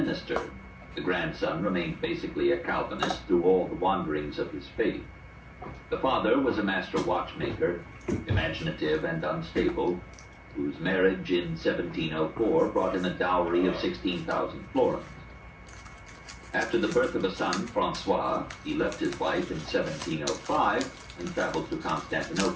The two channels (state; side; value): identical; both; correlation 1.00